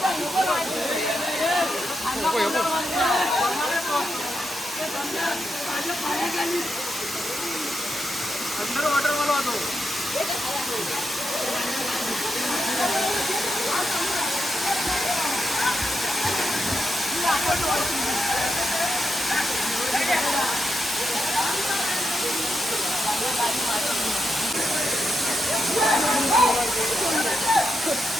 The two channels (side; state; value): both; normal; correlation 0.84